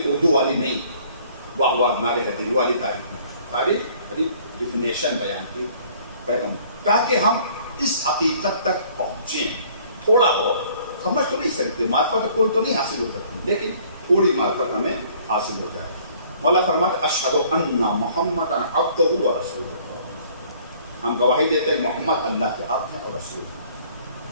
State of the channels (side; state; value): both; inverted; correlation -0.57